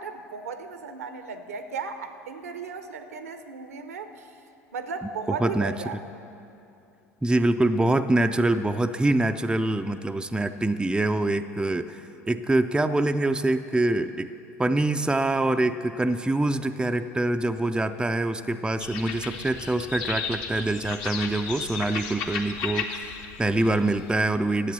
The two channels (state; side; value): normal; both; correlation 0.85